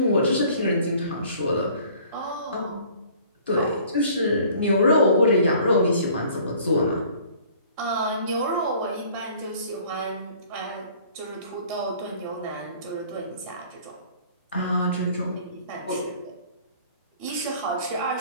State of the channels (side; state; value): both; inverted; correlation -0.53